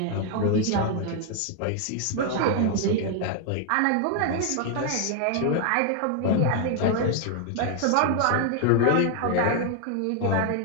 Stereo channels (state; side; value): different; both; correlation 0.00